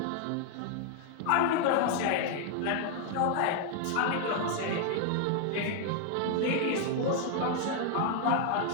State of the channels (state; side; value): different; both; correlation 0.00